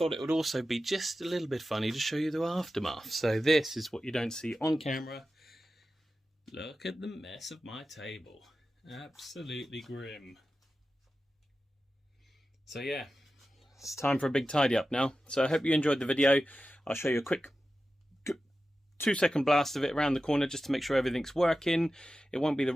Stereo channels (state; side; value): normal; both; correlation 0.93